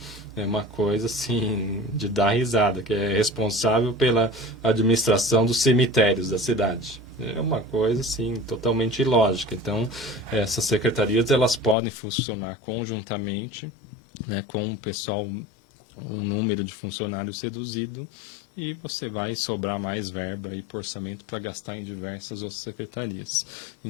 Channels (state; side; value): drops out; right; at 11.8 s